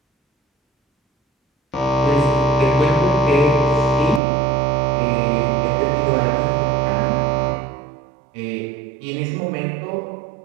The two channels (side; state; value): left; drops out; at 4.2 s